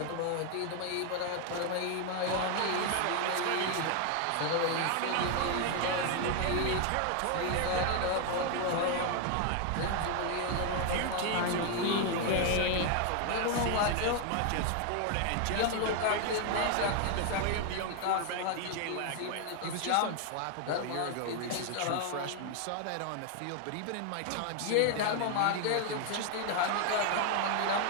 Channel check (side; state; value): both; different; correlation 0.00